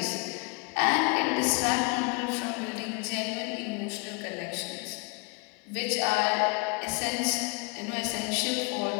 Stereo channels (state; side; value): quieter; right; 31.4 dB